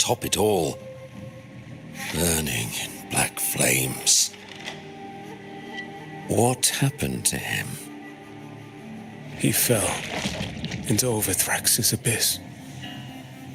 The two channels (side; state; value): both; identical; correlation 1.00